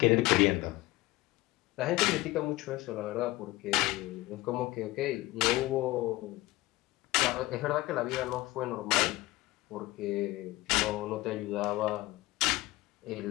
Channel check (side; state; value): right; quieter; 19.1 dB